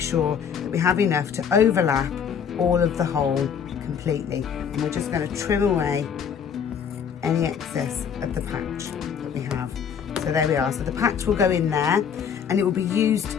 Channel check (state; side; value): quieter; right; 7.4 dB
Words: sure that we have enough to overlap all of the hole completely, and we're just going to trim away any excess of the patch that we have. So there we are. So the patch will go in there and it will be